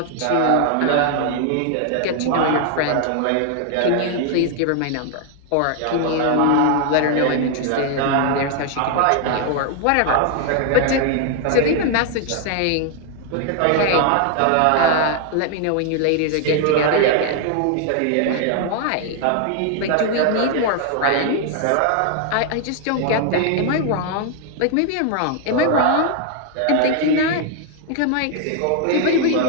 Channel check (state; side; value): different; both; correlation 0.00